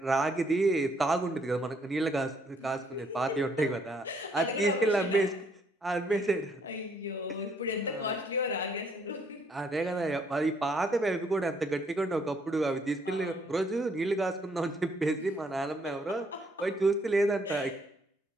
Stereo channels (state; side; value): normal; both; correlation 0.68